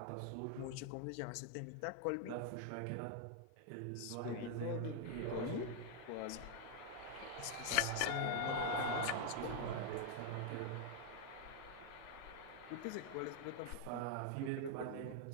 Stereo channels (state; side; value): different; both; correlation 0.00